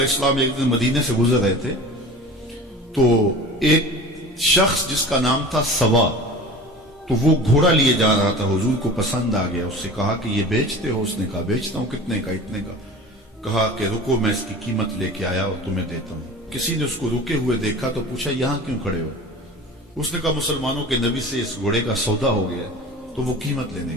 السلام ایک دن مدینے سے گزر رہے تھے تو ایک شخص جس کا نام تھا سوا، تو وہ گھوڑا لیے جا رہا تھا، حضور کو پسند آ گیا، اس سے کہا کہ یہ بیچتے ہو؟ اس نے کہا بیچتا ہوں۔ کتنے کا؟ اتنے کا۔ کہا کہ رکو میں اس کی قیمت لے کے آیا اور تمہیں دیتا ہوں۔ کسی نے اس کو رکے ہوئے دیکھا تو پوچھا یہاں کیوں کھڑے ہو؟ اس نے کہا مسلمانوں کے نبی سے اس گھوڑے کا سودا ہو گیا تو وہ قیمت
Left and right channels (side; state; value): both; normal; correlation 0.38